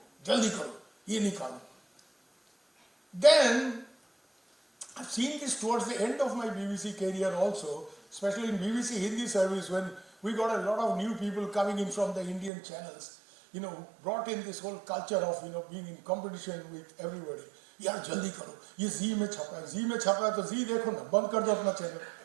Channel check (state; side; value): drops out; left; at 12.5 s